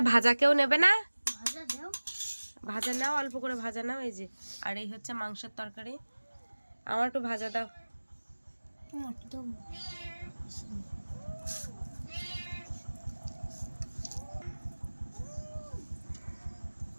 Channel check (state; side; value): inverted; both; correlation -1.00